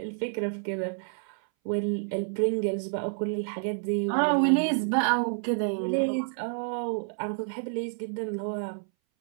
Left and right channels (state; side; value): silent; left; 59 dB below the other